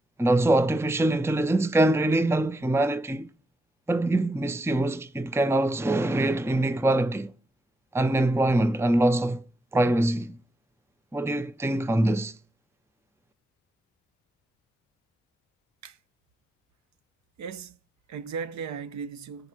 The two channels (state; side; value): normal; both; correlation 0.84